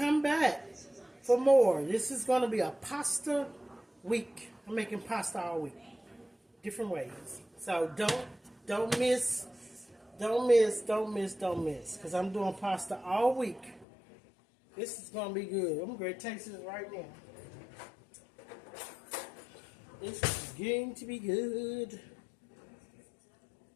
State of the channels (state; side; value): drops out; right; at 13.9 s